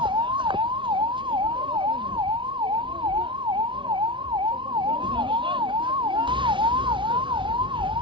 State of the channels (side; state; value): left; late; 0.24 ms